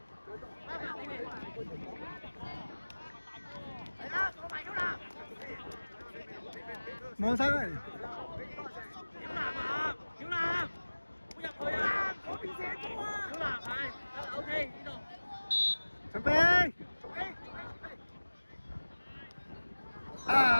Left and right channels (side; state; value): both; inverted; correlation -1.00